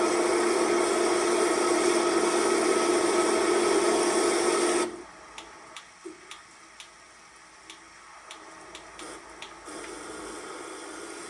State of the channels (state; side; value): identical; both; correlation 1.00